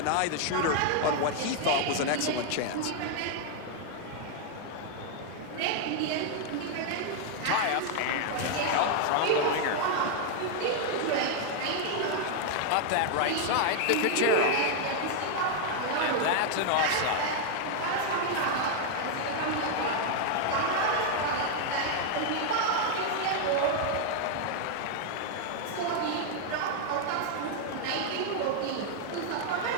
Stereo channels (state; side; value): different; both; correlation 0.00